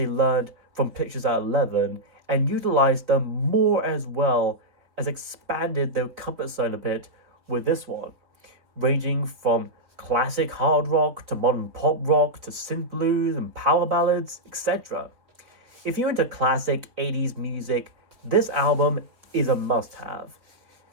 learned from Pictures at 11 and utilized them more as well as expanded their comfort zone a bit with this one, ranging from classic hard rock to modern pop rock to synth blues and power ballads, etc. If you're into classic 80s music, this album is a must-have.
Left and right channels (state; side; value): late; left; 3.9 ms